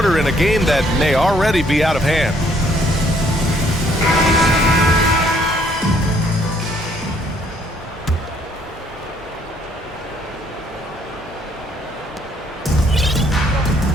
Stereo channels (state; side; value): normal; both; correlation 0.65